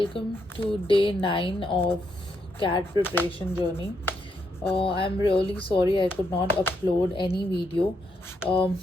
welcome to day 9 of CAT preparation journey. I'm really sorry I could not upload any video um,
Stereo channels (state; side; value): normal; both; correlation 0.78